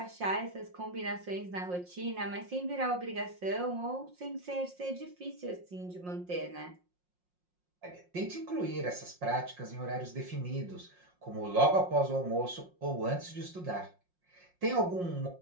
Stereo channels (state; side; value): late; left; 5.6 ms